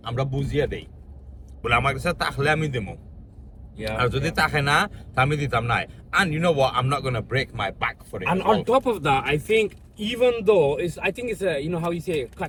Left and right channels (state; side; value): identical; both; correlation 1.00